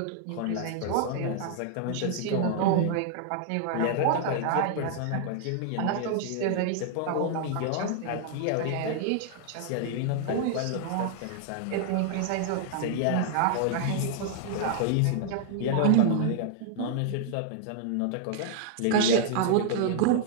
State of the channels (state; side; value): different; both; correlation -0.01